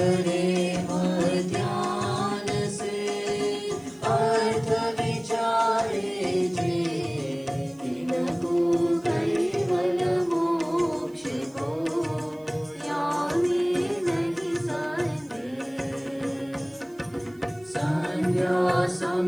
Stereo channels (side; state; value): right; noise; hiss, 30 dB below the sound